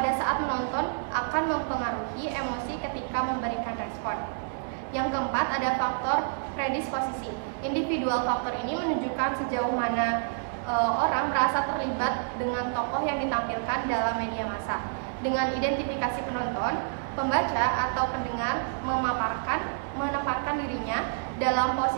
saat menonton akan mempengaruhi emosi ketika memberikan respon. Yang keempat ada faktor predisposisi. Individual faktor ini menunjukkan sejauh mana orang merasa terlibat dengan tokoh yang ditampilkan dalam media massa. Dengan identifikasi penonton, pembaca atau pendengar menempatkan dirinya dalam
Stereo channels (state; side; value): silent; left; digital silence